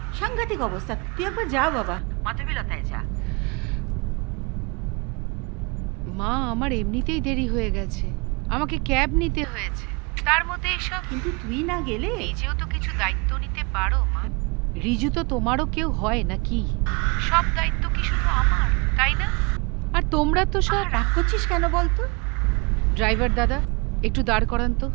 সাংঘাতিক অবস্থা। তুই একবার যা বাবা, মাধবীলতায় যা। মা, আমার এমনিতেই দেরি হয়ে গেছে, আমাকে ক্যাব নিতে হয়েছে, তার মধ্যে এসব। কিন্তু তুই না গেলে নিজেও তো কিছু দায়িত্ব নিতে পারো মা। রিজু তো তোমারও কেউ হয় নাকি? সব দায়িত্ব কি শুধু আমার, তাই না? আর তোমরা তো সব। রাগ করছিস কেন বলতো? ড্রাইভার দাদা, একটু দাঁড় করান তো।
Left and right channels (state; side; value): quieter; left; 29.9 dB